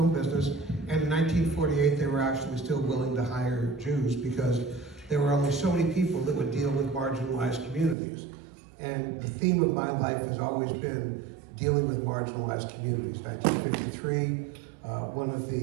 business. And in 1948, they were actually still willing to hire Jews because there were only so many people that would deal with marginalized communities. And the theme of my life has always been dealing with marginalized communities. 1953, one of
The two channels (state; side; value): drops out; left; at 8.0 s